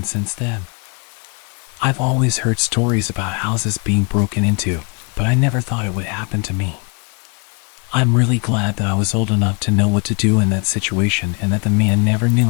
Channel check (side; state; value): right; quieter; 34.4 dB